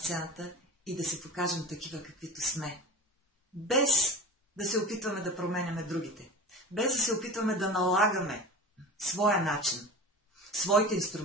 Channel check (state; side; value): normal; both; correlation 0.34